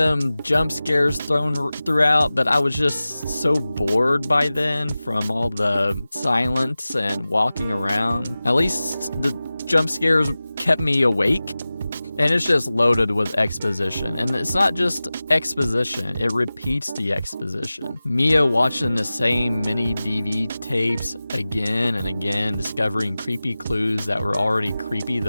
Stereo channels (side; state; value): both; inverted; correlation -0.97